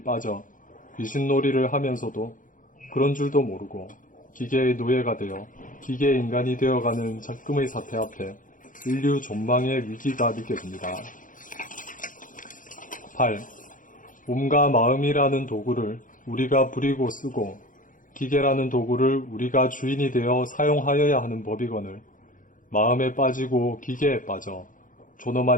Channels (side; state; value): right; late; 0.39 ms